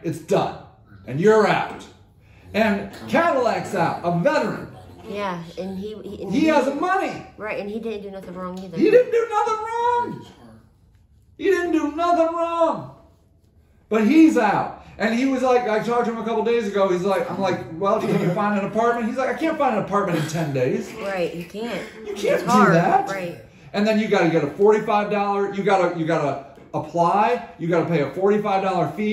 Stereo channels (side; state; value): both; identical; correlation 1.00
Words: it's done. And you're out. And Cadillac's out, a veteran. Yeah, and he has the money. Right, and he didn't do nothing wrong either. He didn't do nothing wrong. He didn't do nothing wrong. But he's out. And he was like, I talked to him a couple days ago. He's like, I'm like, well, can you find an apartment? He's like, I can't find an apartment in 10 days. Right, you can't. You can't do that. Right. And then you got to get a $45. You got to apply. You got to pay a $45